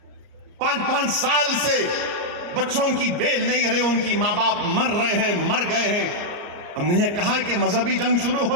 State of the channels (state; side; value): late; left; 34 ms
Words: 5-5 साल से बच्चों की बेल नहीं रही, उनकी माँ बाप मर रहे हैं, मर गए हैं, हमने ये कहा कि मजहबी जंग शुरू